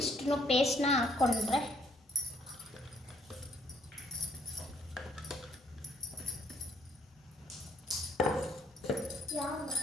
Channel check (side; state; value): both; normal; correlation 0.65